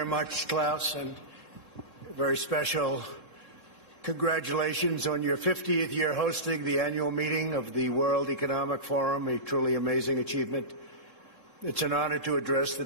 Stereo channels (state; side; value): late; right; 3.7 ms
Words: much, Klaus, and a very special congratulations on your 50th year hosting the annual meeting of the World Economic Forum, a truly amazing achievement. It's an honor to address the